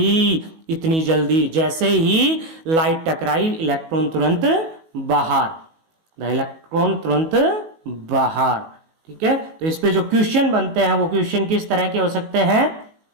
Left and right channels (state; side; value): late; left; 19 ms